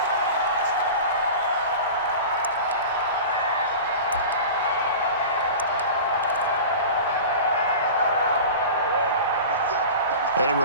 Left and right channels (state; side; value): inverted; both; correlation -0.34